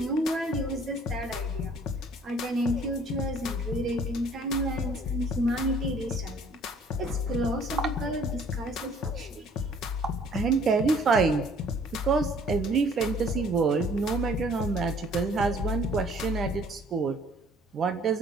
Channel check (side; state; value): both; normal; correlation 0.57